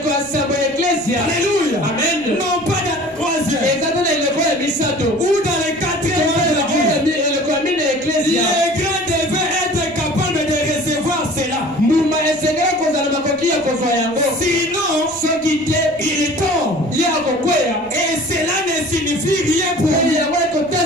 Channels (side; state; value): left; noise; rumble, 28 dB below the sound